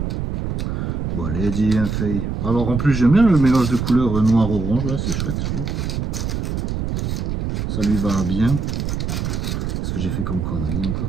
Bon, allez, dis, fait. Alors, en plus, j'aime bien le mélange de couleurs noir-orange, là, c'est chouette, je trouve. Ça lui va bien. Ce que j'ai fait comme connerie, encore.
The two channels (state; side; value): noise; right; rumble, 2 dB below the sound